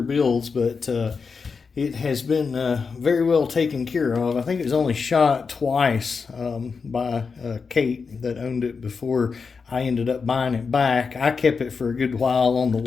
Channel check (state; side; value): quieter; right; 5.2 dB